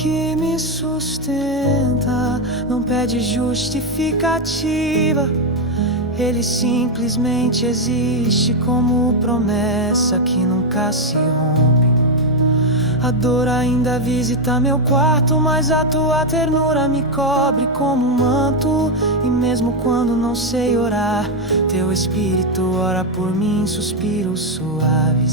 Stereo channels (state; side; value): normal; both; correlation 0.04